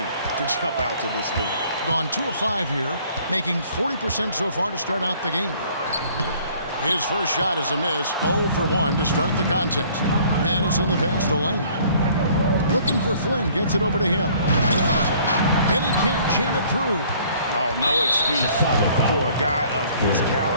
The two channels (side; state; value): both; inverted; correlation -0.57